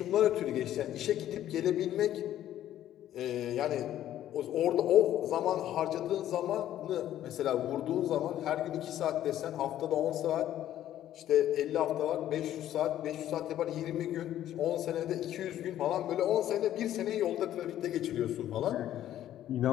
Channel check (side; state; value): right; quieter; 12.1 dB